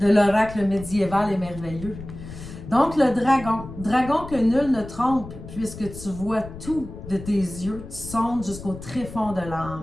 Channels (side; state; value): left; noise; rumble, 13 dB below the sound